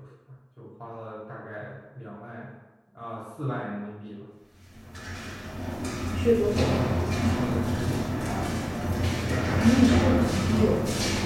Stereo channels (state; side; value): identical; both; correlation 1.00